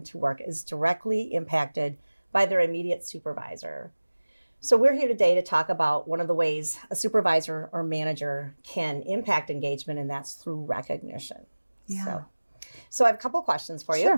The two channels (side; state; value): both; inverted; correlation -1.00